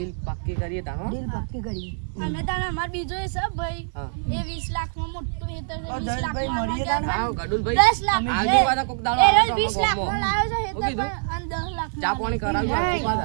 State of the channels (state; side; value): silent; left; 62 dB below the other